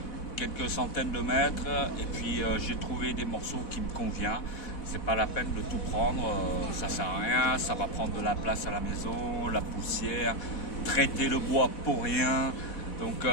quelques centaines de mètres et puis j'ai trouvé des morceaux qui me conviennent. C'est pas la peine de tout prendre, ça sert à rien, ça va prendre de la place à la maison, la poussière, traiter le bois pour rien. Donc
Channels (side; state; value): right; late; 4.1 ms